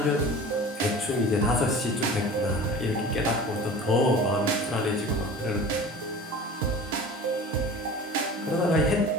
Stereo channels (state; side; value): normal; both; correlation 0.39